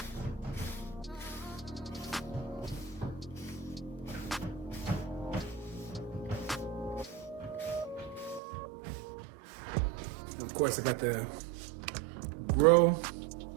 Of course, I got the Grow.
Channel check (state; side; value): drops out; left; at 8.4 s